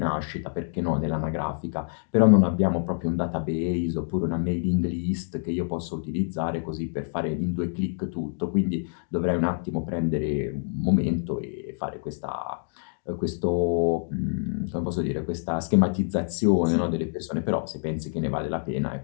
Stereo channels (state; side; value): silent; right; digital silence